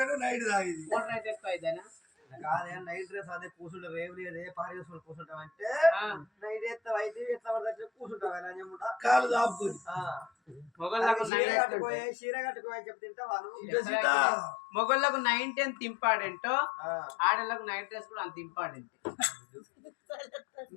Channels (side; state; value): right; drops out; at 11.3 s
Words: night తాగింది కాదే నైట్ డ్రెస్ అదే కూర్చుంటావు రేవు లేదే పారి వేసుకొని కూర్చుంటావు అంటే నైట్ ఎత్తావు అయితే ఎట్లా పడితే కూర్చుంటావు అని చెప్పుకుంటా కాలు దాపుకొని చీర కట్టుకోని చెప్తే తింటావాను మొగళ్ళకు 9-10 ఇంపార్టెంట్ ఆడలకు నైట్ డ్రెస్ కూడా అంత ఇంపార్టెంట్